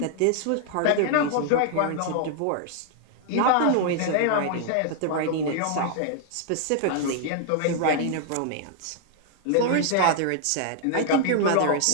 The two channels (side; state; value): both; different; correlation 0.00